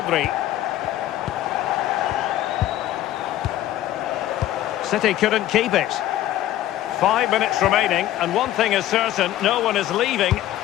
City couldn't keep it. 5 minutes remaining, and one thing is certain, no one is leaving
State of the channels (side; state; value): right; quieter; 13.7 dB